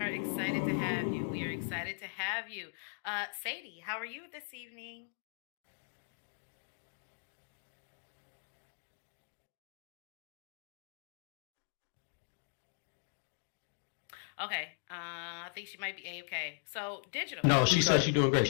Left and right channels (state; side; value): silent; right; digital silence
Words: excited to have you. We are excited to have you. Sadie, how are you this evening? Okay, I think she might be A-okay. So, digital. No, she said Okay. she's doing great.